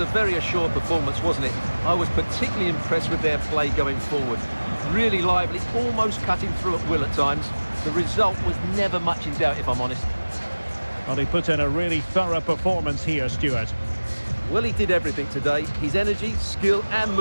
very assured performance, wasn't it? I was particularly impressed with their play going forward. Really lively, almost cutting through at will at times. The result was never much in doubt, if I'm honest. Well, he put in a really thorough performance here, Stuart. Well, he did everything today. His energy, skill and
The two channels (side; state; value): both; inverted; correlation -1.00